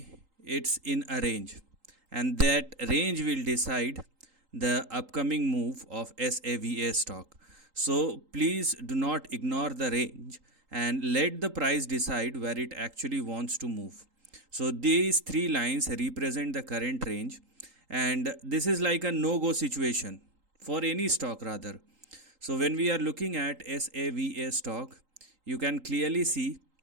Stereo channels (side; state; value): left; late; 3.8 ms